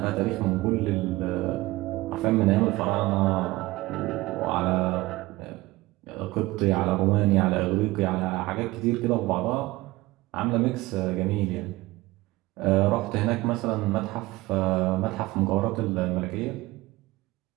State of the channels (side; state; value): left; quieter; 19.7 dB